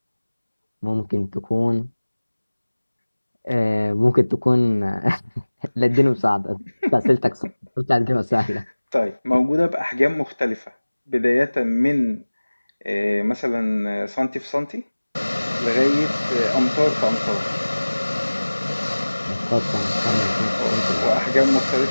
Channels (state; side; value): inverted; both; correlation -1.00